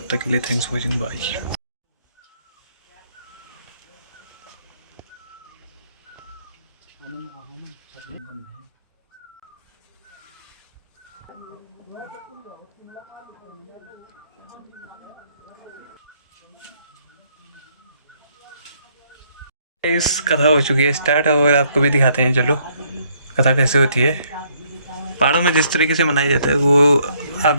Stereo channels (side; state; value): both; inverted; correlation -0.68